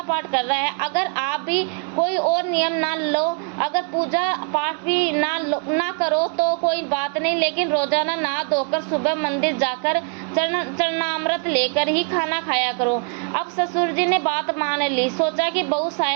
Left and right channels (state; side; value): quieter; left; 38.2 dB